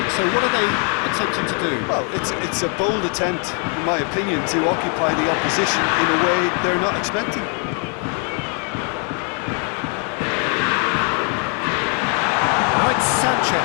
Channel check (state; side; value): quieter; right; 39.5 dB